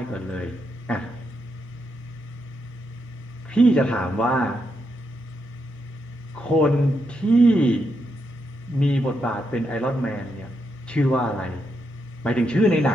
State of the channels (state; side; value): normal; both; correlation 0.82